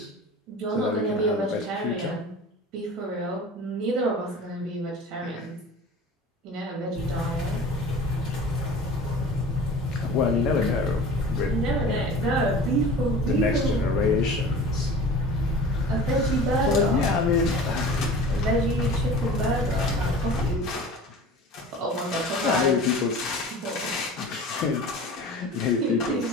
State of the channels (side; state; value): both; normal; correlation 0.39